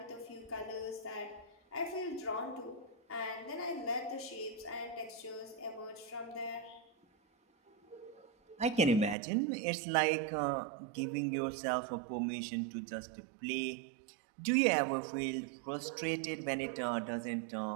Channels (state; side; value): drops out; left; at 9.2 s